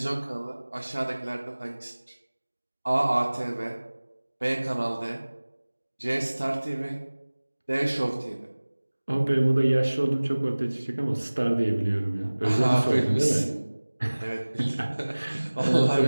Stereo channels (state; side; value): inverted; both; correlation -1.00